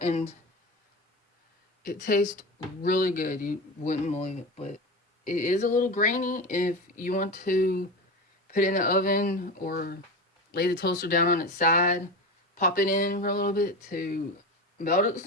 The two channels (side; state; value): both; normal; correlation 0.24